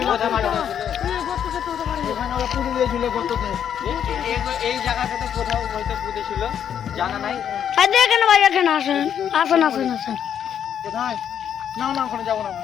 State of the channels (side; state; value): right; quieter; 8.9 dB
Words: কোথায় মারা হয়েছিল? এখানে ওরা পুড়ে দিয়েছিল গর্ততে। এই জায়গাটাতে কোথাও হয়তো পুঁতেছিল, জানা নাই। আর দেখেন ভাই, এখানে আসেন আসেন আসেন আসেন। কোথায়? না না, ওখানে যাবো না।